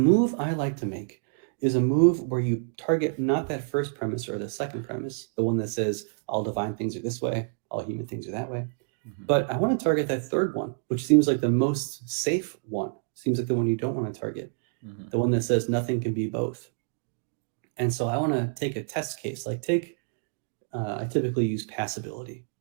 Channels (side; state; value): left; silent; digital silence